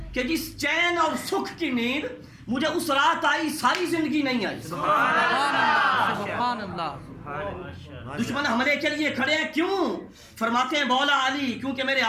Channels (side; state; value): both; identical; correlation 1.00